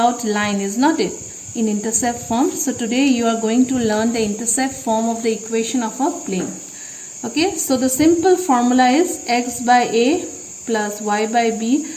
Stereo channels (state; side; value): identical; both; correlation 1.00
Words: line, is not it, in intercept form. So today you are going to learn the intercept form of the equation of a plane. Okay, so the simple formula is x by a plus y by b